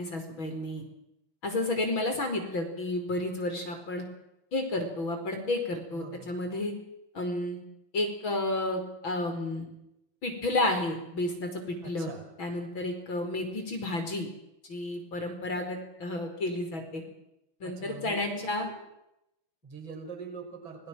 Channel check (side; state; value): right; late; 6.1 ms